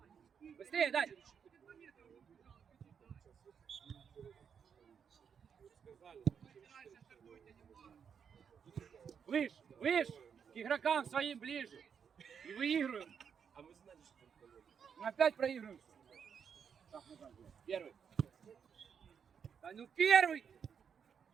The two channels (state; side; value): quieter; left; 7.1 dB